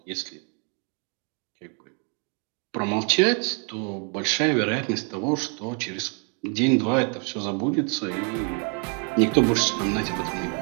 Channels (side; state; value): left; quieter; 38.6 dB